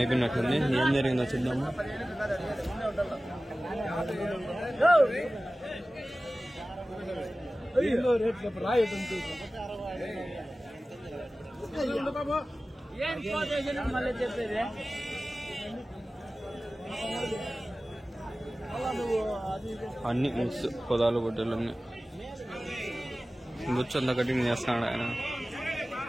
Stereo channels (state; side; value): normal; both; correlation 0.96